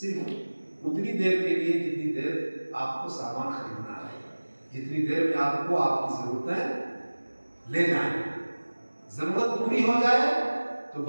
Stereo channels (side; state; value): both; inverted; correlation -1.00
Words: اتنی دیر کے لیے جتنی دیر آپ کو سامان خریدنا ہے، جتنی دیر میں آپ کو آپ کی ضرورتیں لے جائیں۔ ضرورت پوری ہو جائے تو